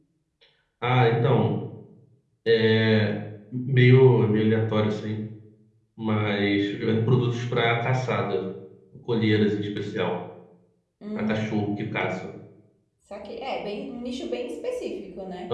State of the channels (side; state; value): both; identical; correlation 1.00